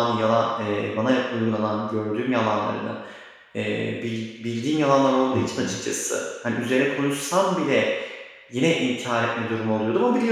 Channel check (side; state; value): both; identical; correlation 1.00